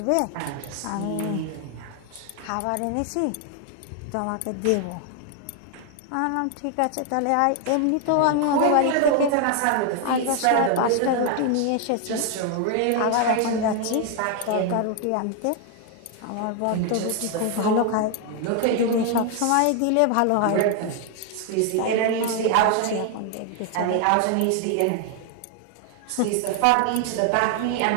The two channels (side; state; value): both; different; correlation 0.00